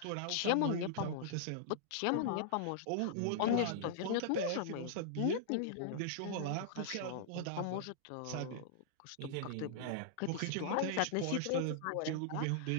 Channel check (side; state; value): both; different; correlation -0.01